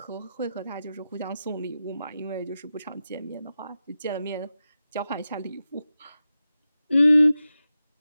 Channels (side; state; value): both; inverted; correlation -0.92